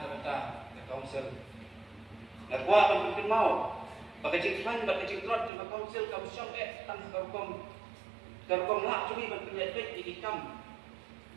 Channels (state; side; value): drops out; left; at 5.5 s